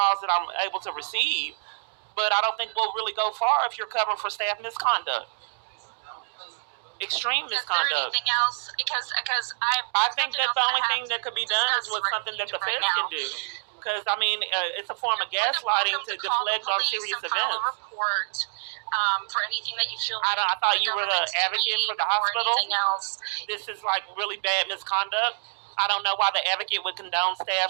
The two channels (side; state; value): left; silent; digital silence